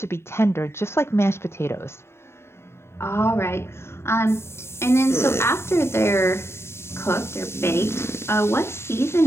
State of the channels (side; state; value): right; late; 0.12 ms